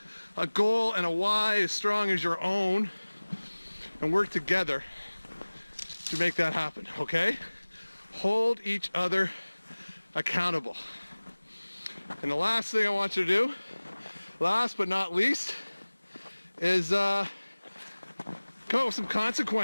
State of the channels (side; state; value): both; inverted; correlation -1.00